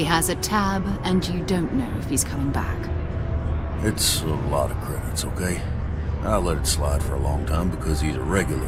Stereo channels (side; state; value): both; identical; correlation 1.00